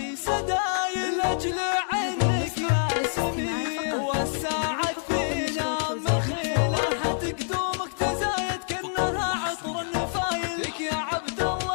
سدايل لاجل عينك يا سمي والساعد فينا مخيله حتقدومك تزايد كأنها عطر النفايل لك يا عبد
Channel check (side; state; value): right; silent; digital silence